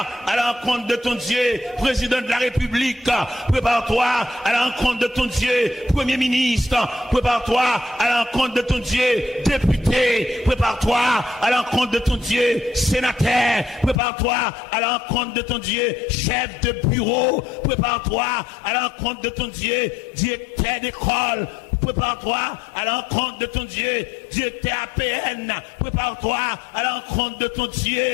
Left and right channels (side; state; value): right; drops out; at 14.0 s